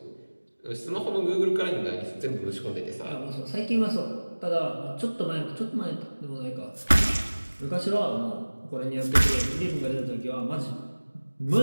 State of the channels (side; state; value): both; inverted; correlation -1.00